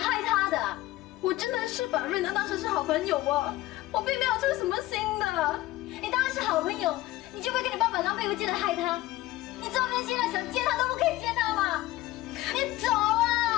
他的。我真的是把润良当成是好朋友啊，我并没有出什么心的。你当然是好朋友，你就会跟你爸爸狼狈为奸的害他。你这边现在想见他都不可以见他吗？你走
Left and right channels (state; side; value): quieter; right; 16.9 dB